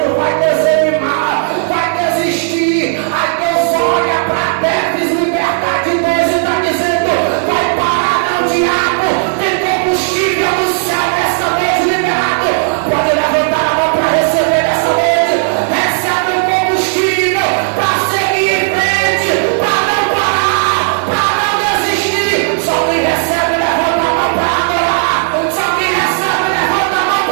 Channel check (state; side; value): silent; left; digital silence